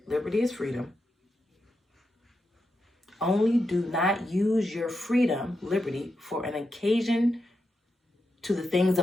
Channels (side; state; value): both; normal; correlation 0.86